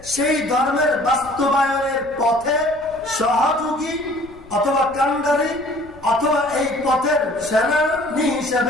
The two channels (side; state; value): left; noise; rumble, 23 dB below the sound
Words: সেই ধর্মের বাস্তবায়নের পথে সহযোগী অথবা কান্ডারি অথবা এই পথের সেনানী